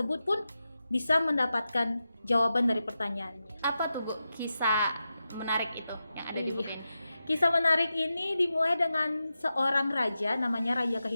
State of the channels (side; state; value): both; inverted; correlation -0.91